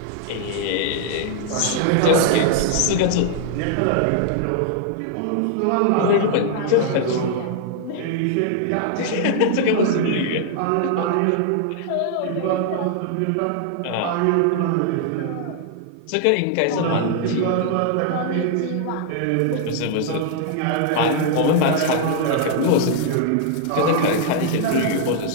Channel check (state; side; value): different; both; correlation 0.00